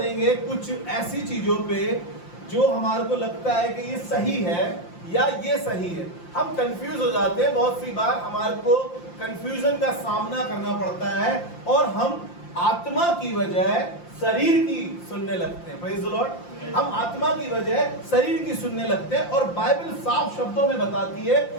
कुछ ऐसी चीजों पे जो हमारे को लगता है कि ये सही है या ये सही है। हम कंफ्यूज हो जाते हैं, बहुत सी बार हमारे को कंफ्यूजन का सामना करना पड़ता है और हम आत्मा की बजाय शरीर की सुनने लगते हैं। Praise the Lord. हम आत्मा की बजाय शरीर की सुनने लगते हैं और बाइबल साफ शब्दों में बताती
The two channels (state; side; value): late; right; 5.8 ms